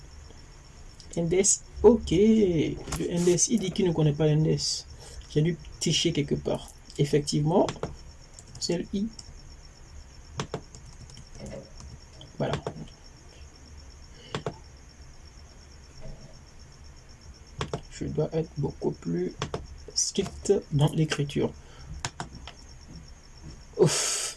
index, ok, le index, il dit qu'il ne connaît pas l'index. J'ai dû tricher quelque part. Effectivement, c'est le i. Voilà. Je dois être beaucoup plus strict dans l'écriture.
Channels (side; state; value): both; identical; correlation 1.00